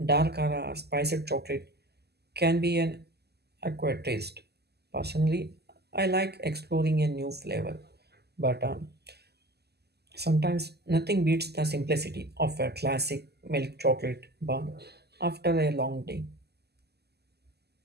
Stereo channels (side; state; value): left; late; 0.47 ms